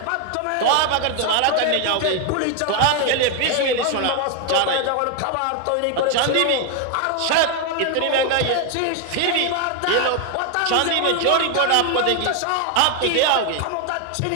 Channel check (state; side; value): different; both; correlation 0.01